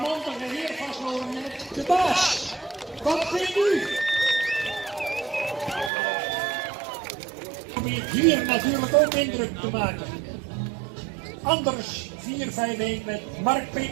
heer vastlopen met de baas. Wat vindt u? Probeert hier natuurlijk ook indruk te maken. Anders 4-5-1 met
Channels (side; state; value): left; drops out; at 5.9 s